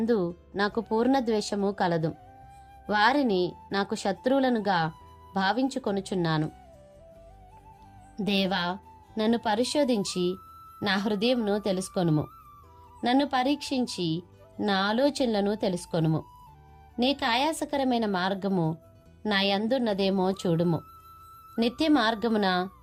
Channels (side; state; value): both; identical; correlation 1.00